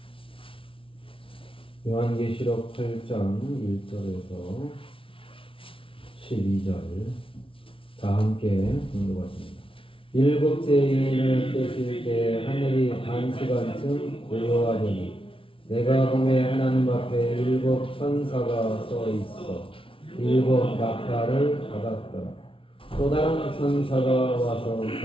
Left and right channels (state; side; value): late; right; 0.26 ms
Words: 요한계시록 8장 1절에서 12절 다 함께 공독하십니다. 일곱째 인을 떼실 때 하늘이 반시간쯤 고요하더니 내가 보매 하나님 앞에 일곱 천사가 서 있어 일곱 나팔을 받았더라. 또 다른 천사가 와서